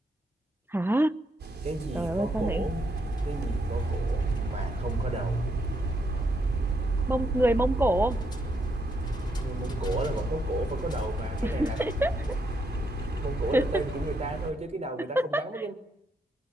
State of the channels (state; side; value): normal; both; correlation 0.77